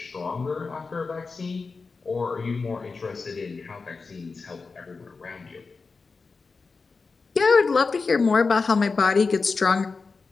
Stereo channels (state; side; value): quieter; right; 4.4 dB